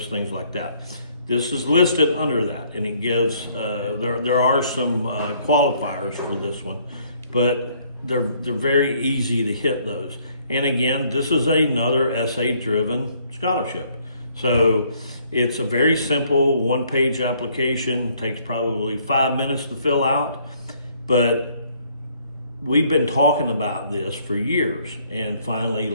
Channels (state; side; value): inverted; both; correlation -0.65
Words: things like that. This is listed under that, and it gives, there are some qualifiers for this one, but they're very easy to hit those. And again, this is another essay-driven scholarship. So it's a very simple 1-page application, takes probably 5 minutes to fill out, but we've been talking about this for years, and finally